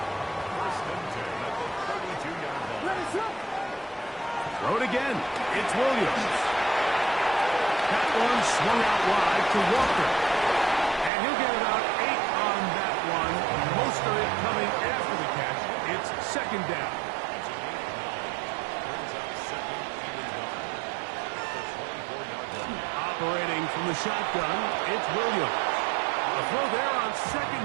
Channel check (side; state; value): left; drops out; at 11.1 s